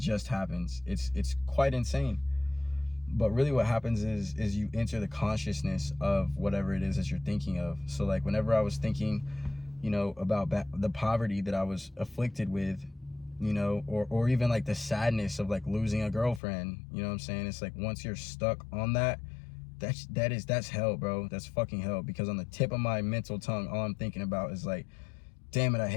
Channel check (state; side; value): drops out; right; at 16.4 s